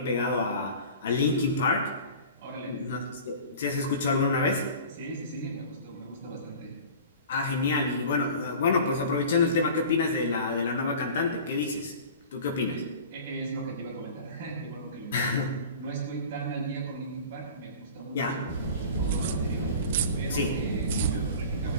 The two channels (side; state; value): both; inverted; correlation -0.40